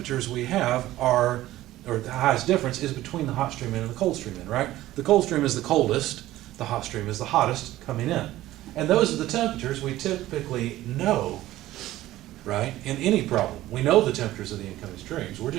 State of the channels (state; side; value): quieter; left; 15.5 dB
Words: we have are, or the highest difference is between the hot stream in and the cold stream in, right? The cold stream is the coldest, the hot stream is the hottest coming in. And those are the temperatures we typically know, right, in any problem. We know the temperatures of the incoming streams. We're